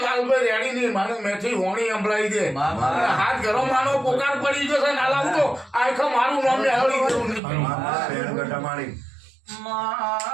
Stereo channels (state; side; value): drops out; left; at 7.4 s